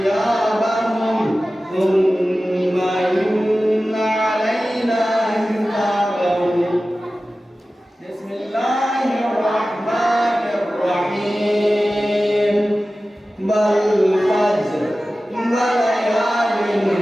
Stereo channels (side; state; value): both; normal; correlation 0.95